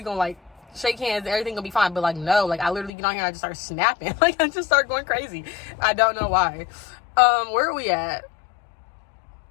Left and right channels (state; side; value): drops out; right; at 2.9 s